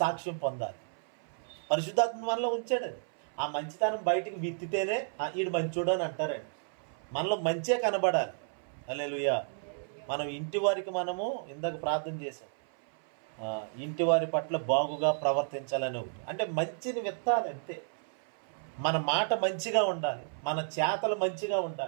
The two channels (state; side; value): silent; left; 56 dB below the other